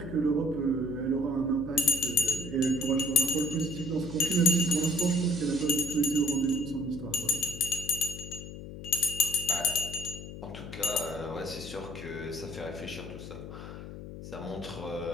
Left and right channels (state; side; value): noise; left; hum, 11 dB below the sound